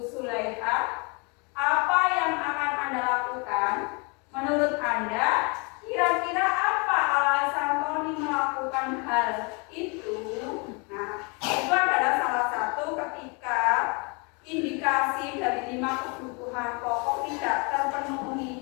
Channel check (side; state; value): right; quieter; 32.0 dB